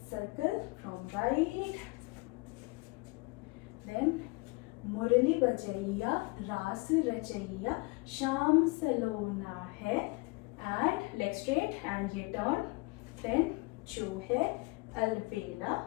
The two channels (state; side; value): quieter; right; 26.5 dB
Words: सर्कल फ्रॉम राइट, देन मुरली बजैया रास रचैया, शाम सलोना है, एंड लेग स्ट्रेट, एंड ये टर्न, देन जो है अलबेला,